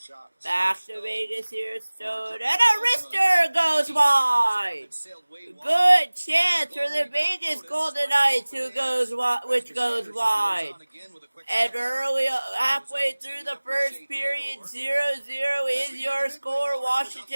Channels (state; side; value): inverted; both; correlation -1.00